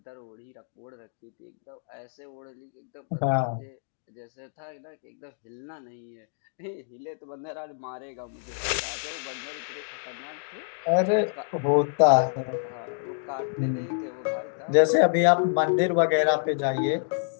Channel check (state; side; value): silent; right; digital silence